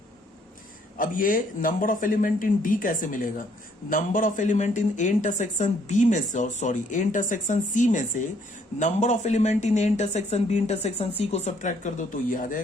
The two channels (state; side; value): normal; both; correlation 0.66